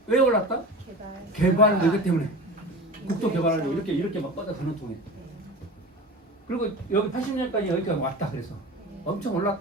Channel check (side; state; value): both; normal; correlation 0.33